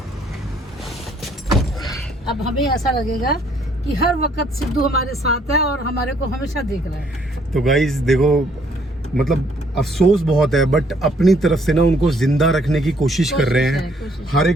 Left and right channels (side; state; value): both; normal; correlation 0.65